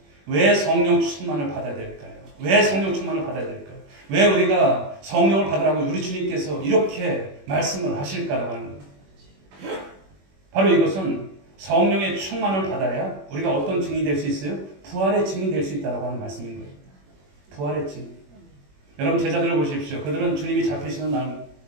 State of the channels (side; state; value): left; late; 21 ms